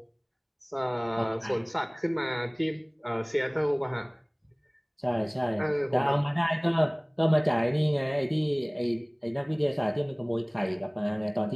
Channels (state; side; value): identical; both; correlation 1.00